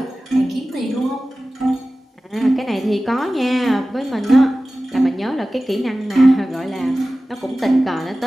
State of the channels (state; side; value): normal; both; correlation 0.96